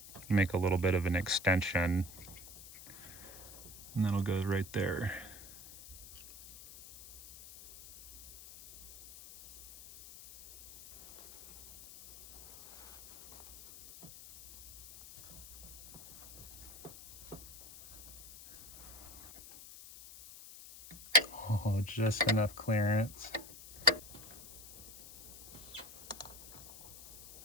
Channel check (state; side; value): noise; left; hiss, 15 dB below the sound